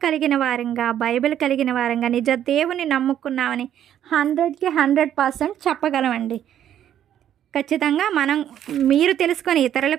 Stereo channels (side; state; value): left; quieter; 10.6 dB